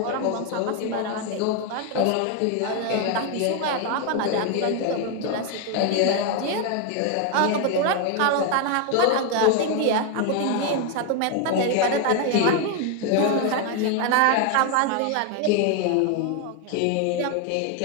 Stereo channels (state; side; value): different; both; correlation 0.01